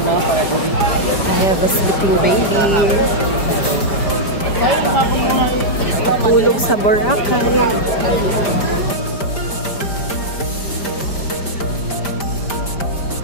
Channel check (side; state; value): right; late; 5.1 ms